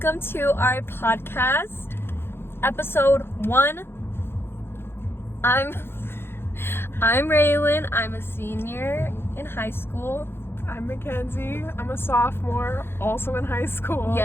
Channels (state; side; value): late; right; 0.11 ms